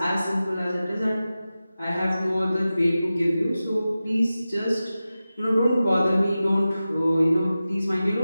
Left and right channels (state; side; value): inverted; both; correlation -0.94